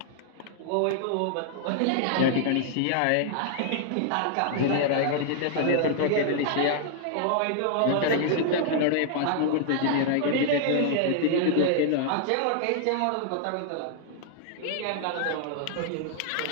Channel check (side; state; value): both; different; correlation -0.01